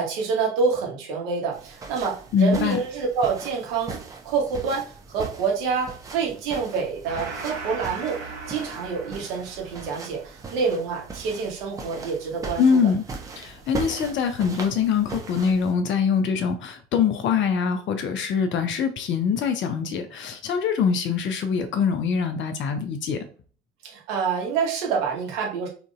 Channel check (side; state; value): both; normal; correlation 0.34